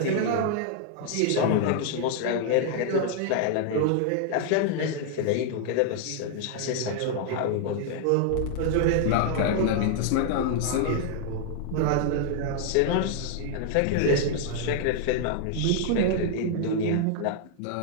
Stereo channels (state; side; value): different; both; correlation 0.00